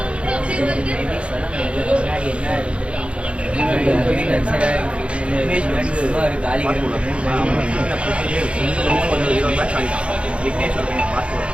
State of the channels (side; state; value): left; late; 0.059 ms